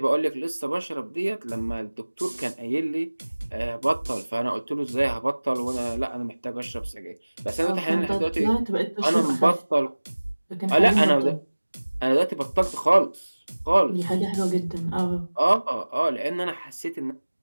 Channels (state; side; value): inverted; both; correlation -1.00